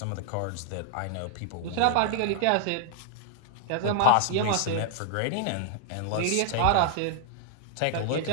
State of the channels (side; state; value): both; different; correlation -0.01